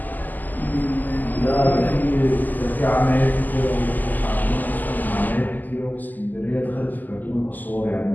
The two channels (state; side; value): late; right; 0.084 ms